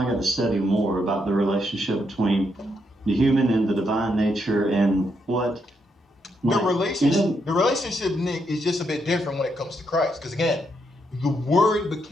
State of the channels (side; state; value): both; normal; correlation 0.79